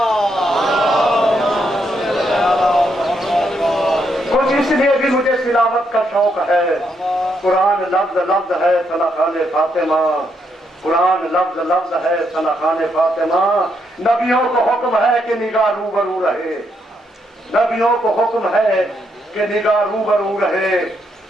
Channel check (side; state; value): both; normal; correlation 0.77